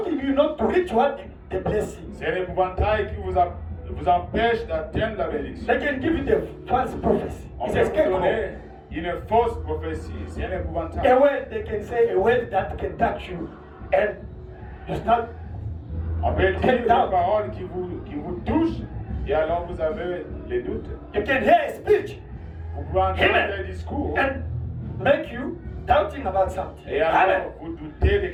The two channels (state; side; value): identical; both; correlation 1.00